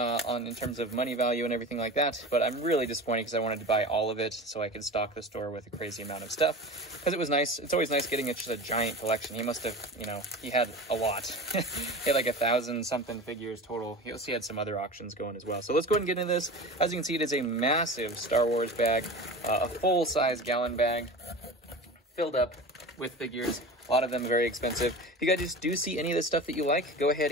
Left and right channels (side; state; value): both; normal; correlation 0.32